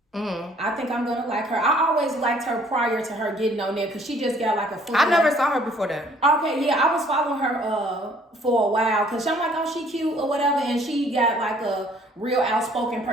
I think I'm gonna like her. I always liked her prior to her getting on there because she just got like a full. I never saw her before that. Okay, yeah, I was following her for a while because I'm like, oh, she cute or whatever, and she got like a real outspoken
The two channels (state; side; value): normal; both; correlation 0.59